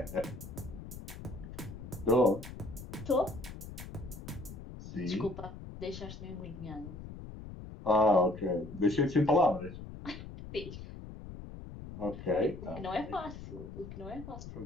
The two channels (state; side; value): noise; left; rumble, 12 dB below the sound